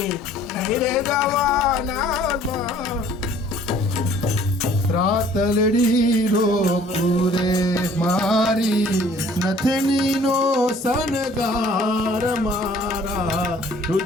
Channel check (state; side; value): normal; both; correlation 0.55